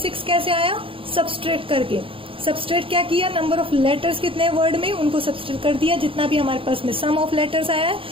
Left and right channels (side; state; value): left; late; 0.26 ms